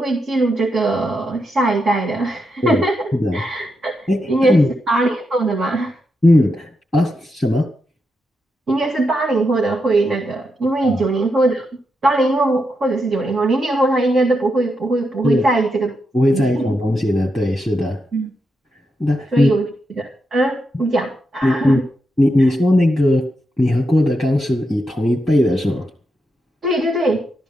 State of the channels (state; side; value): normal; both; correlation 0.84